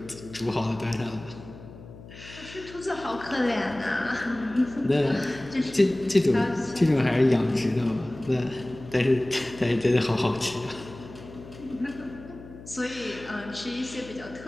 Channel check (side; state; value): left; noise; hum, 17 dB below the sound